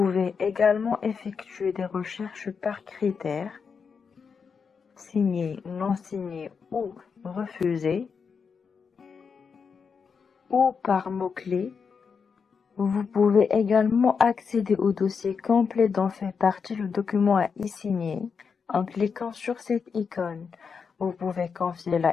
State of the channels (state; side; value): quieter; right; 5.9 dB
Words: également effectuer des recherches par critères, signé, non signé ou refusé, ou par mots-clés. Vous pouvez également accéder au dossier complet dont fait partie le document à e-signer en cliquant sur cette icône. Vous pouvez confier la